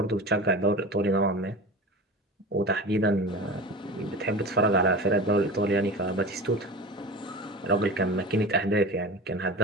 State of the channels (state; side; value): normal; both; correlation 0.32